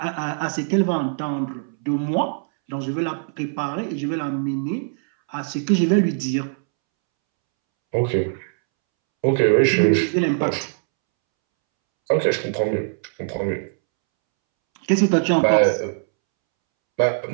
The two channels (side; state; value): left; silent; 64 dB below the other